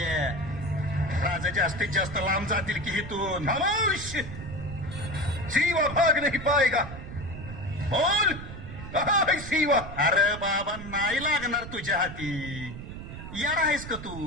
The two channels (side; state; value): right; noise; rumble, 11 dB below the sound